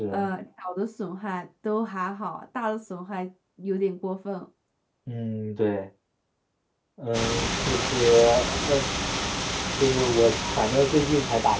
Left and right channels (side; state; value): both; identical; correlation 1.00